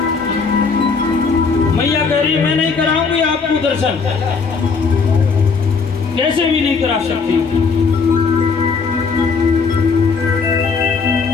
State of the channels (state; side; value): quieter; right; 5.0 dB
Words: मैया कह रही मैं नहीं कराऊंगी आपको दर्शन, कैसे भी नहीं करा सकती।